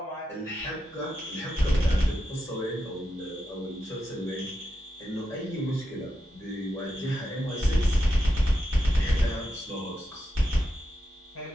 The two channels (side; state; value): both; normal; correlation 0.87